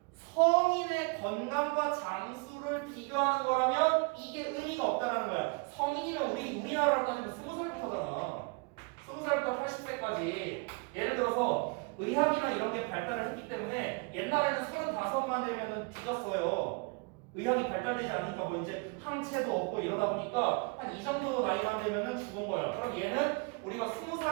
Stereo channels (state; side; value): quieter; left; 30.9 dB